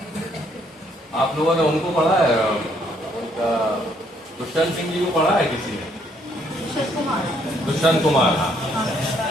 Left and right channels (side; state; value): both; normal; correlation 0.68